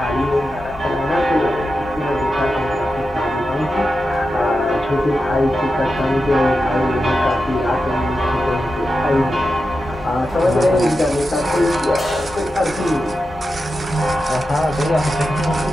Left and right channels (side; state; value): both; normal; correlation 0.90